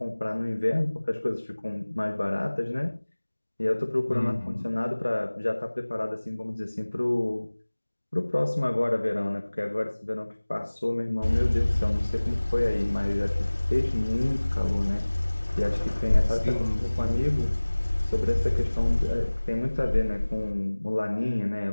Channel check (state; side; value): inverted; both; correlation -1.00